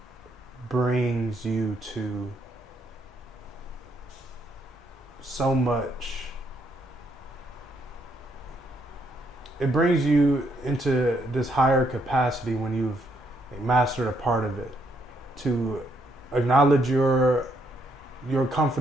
brings you to so much. It brings you into this higher capacity when you've mastered a part of it, to acknowledge your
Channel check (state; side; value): normal; both; correlation 0.73